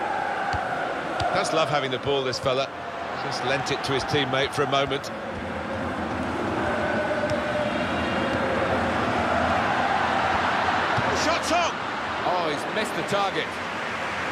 Does love having the ball, this fella. Just lent it to his teammate for a moment. The shot's on! Oh, he's missed the target.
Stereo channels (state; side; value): identical; both; correlation 1.00